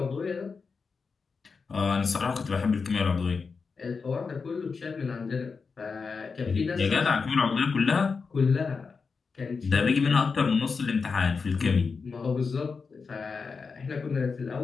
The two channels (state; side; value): quieter; right; 5.0 dB